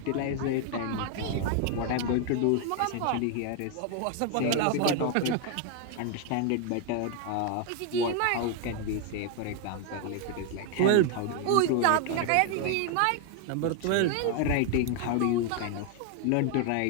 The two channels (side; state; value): both; different; correlation 0.00